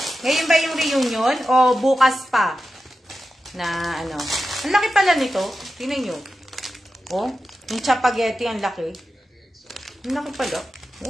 Ngayon ba yung reunion? O bukas pa? Na ano. Ang laki pala nito. Tingnan nyo. Oh, yung chapageti, ang laki. Ang laki pala.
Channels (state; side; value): normal; both; correlation 0.91